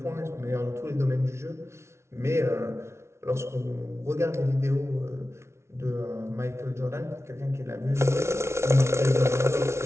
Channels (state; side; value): late; left; 0.13 ms